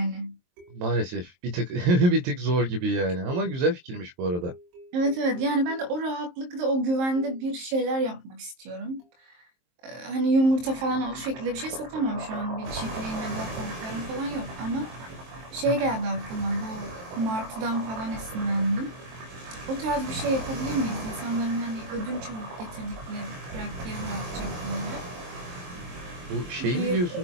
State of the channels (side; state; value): left; late; 23 ms